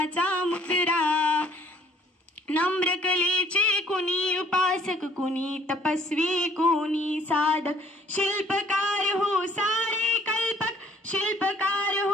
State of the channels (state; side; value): normal; both; correlation 0.58